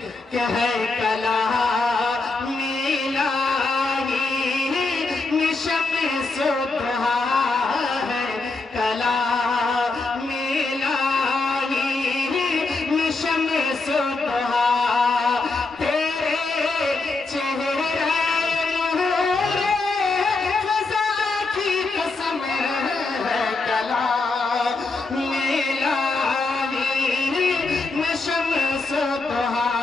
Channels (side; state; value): right; quieter; 3.6 dB